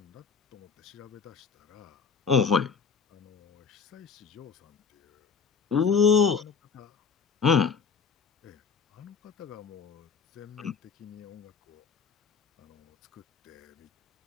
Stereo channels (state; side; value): quieter; right; 5.9 dB